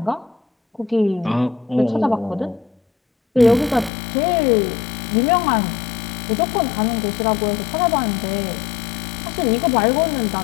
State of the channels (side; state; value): right; drops out; at 3.9 s